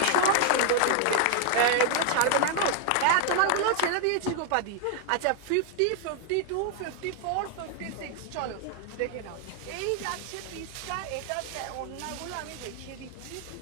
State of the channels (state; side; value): different; both; correlation 0.00